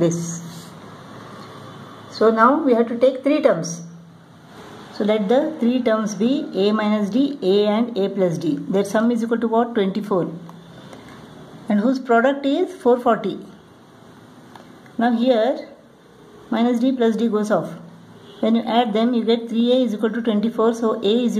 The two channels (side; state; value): both; identical; correlation 1.00